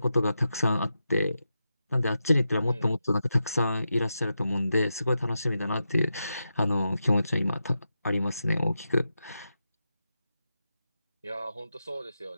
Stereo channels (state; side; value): inverted; both; correlation -0.89